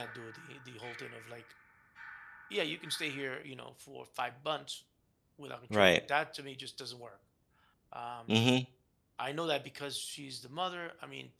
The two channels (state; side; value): identical; both; correlation 1.00